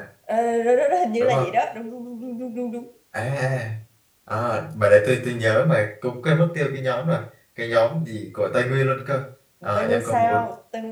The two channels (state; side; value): identical; both; correlation 1.00